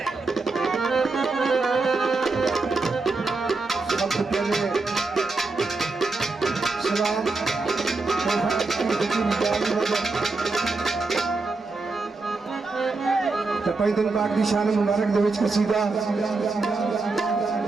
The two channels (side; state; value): left; quieter; 3.7 dB